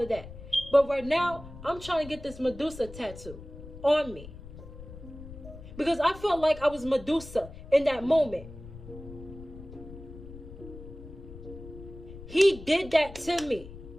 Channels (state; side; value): noise; left; rumble, 14 dB below the sound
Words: that. But right now, I'm trying to get this Medusa tattoo on me. Because I felt like I was Medusa in that moment. He did that to me.